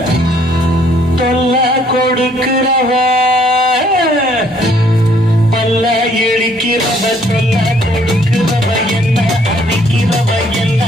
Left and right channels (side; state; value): both; normal; correlation 0.64